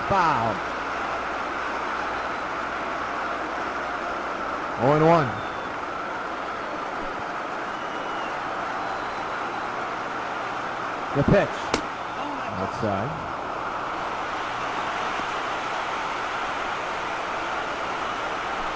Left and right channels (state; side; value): identical; both; correlation 1.00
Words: foul. 0-1. The pitch. Outside.